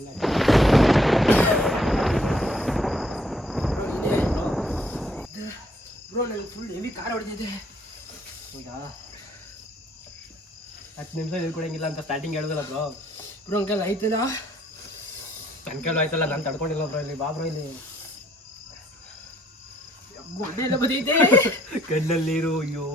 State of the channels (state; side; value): normal; both; correlation 0.65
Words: ಬ್ರೋ. ನನಗೆ ಫುಲ್ ಹೆವಿ ಖಾರ ಹೊಡೆದಿದೆ. ಈಗ 10 ನಿಮಿಷ ಹೇಳ್ಕೊಡಂಗಿಲ್ಲ ಅಂತ ಸ್ಟಾರ್ಟಿಂಗ್ ಹೇಳಿದಲ್ಲ ಬ್ರೋ. ಬ್ರೋ ಅಂಕಲ್ ಆಯ್ತಲ್ಲ, ನನ್ನ ಕೈಲೂ ಆಯ್ತಲ್ಲ, ನಾನು ತಡ್ಕೊಂಡಿಲ್ಲ ಬ್ರೋ. ಇಲ್ಲಿ ಬಾ ಬ್ರೋ, ಇಲ್ಲಿ ಗೊಡ್ಡೆ ಎಲ್ಲ ಬದೈತೆ. ಕಣ್ಣಲ್ಲಿ ನೀರು. ಅಯ್ಯೋ